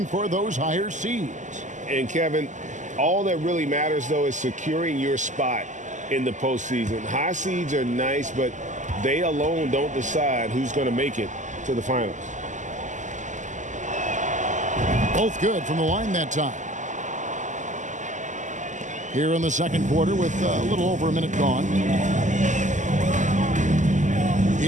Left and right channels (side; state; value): left; late; 0.36 ms